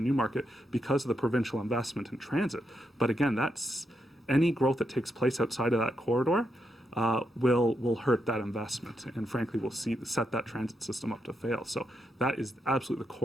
Newmarket because of the provincial investment in transit. But again, that's any growth that takes place outside of that corridor will hurt that investment, and frankly will set that transit system up to fail. So that is absolutely the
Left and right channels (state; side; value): normal; both; correlation 0.82